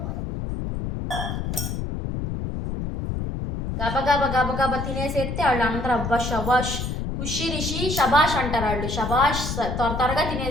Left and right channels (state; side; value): noise; left; rumble, 4 dB below the sound